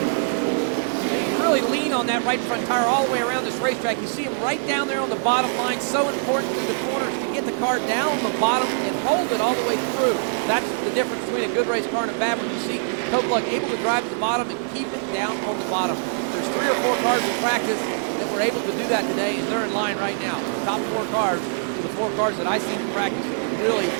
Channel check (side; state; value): left; silent; 63 dB below the other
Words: You really lean on that right front tire all the way around this racetrack. You see him right down there on the bottom line. So important through the corners to get the car down on the bottom and hold it all the way through. That's the difference between a good race car and a bad one. You see Kobeluk able to drive to the bottom and keep it down on the bottom. There's 3 or 4 cars in practice that were able to do that today, and they're in line right now. The top 4 cars are the 4 cars that I've seen in practice that can really